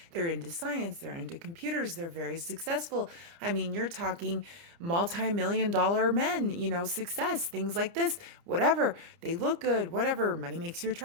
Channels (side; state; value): left; late; 29 ms